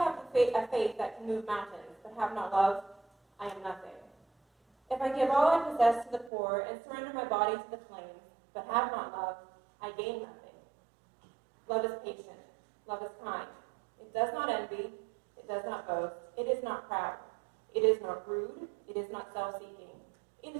have a faith that can move mountains, but have not love, I am nothing. If I give all I possess to the poor and surrender my body to the flames, but have not love, I gain nothing. Love is patient. Love is kind. It does not envy. It does not boast. It is not proud. It is not rude. It is not self-seeking. It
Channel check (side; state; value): left; drops out; at 6.3 s